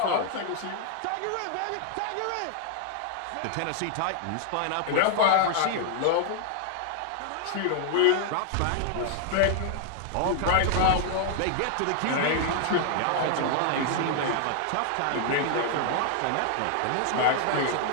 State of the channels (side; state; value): both; different; correlation 0.00